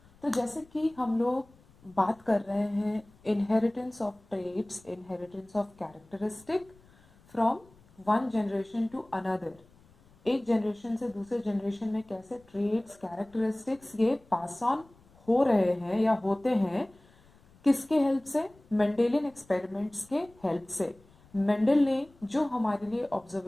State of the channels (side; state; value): left; noise; rumble, 28 dB below the sound